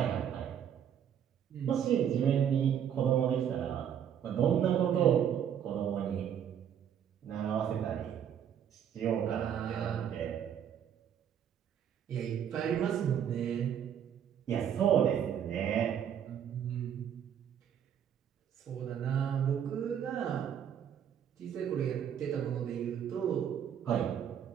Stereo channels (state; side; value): quieter; left; 9.0 dB